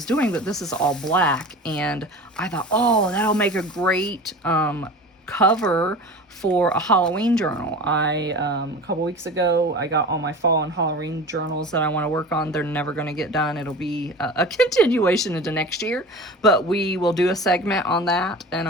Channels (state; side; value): normal; both; correlation 0.35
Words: doing, but this is all black, and I thought, oh, that'll make a great cover for a Halloween journal. A couple weeks ago, I got all my fall and Halloween journals that I want to work on. They're never going to get done. It'll be a continuation into next year, but we will do a segment on that, and